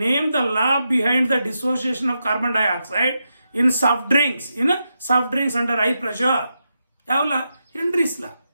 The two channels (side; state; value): both; inverted; correlation -0.86